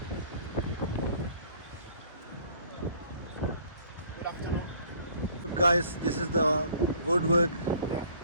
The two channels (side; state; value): both; inverted; correlation -0.56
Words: Guys, this is the woodwork